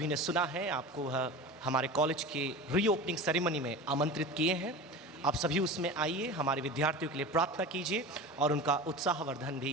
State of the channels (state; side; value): normal; both; correlation 0.32